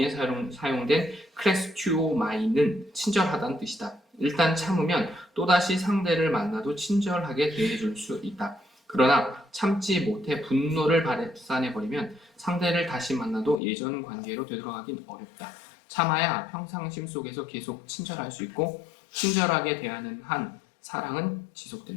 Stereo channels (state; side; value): drops out; right; at 13.6 s